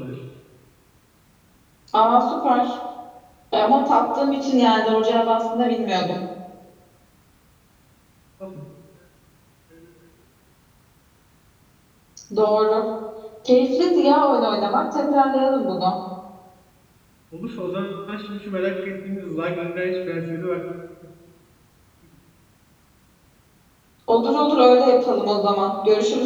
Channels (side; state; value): both; identical; correlation 1.00